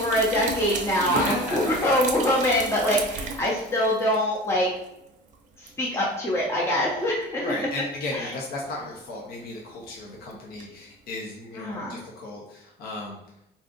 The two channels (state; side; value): normal; both; correlation 0.36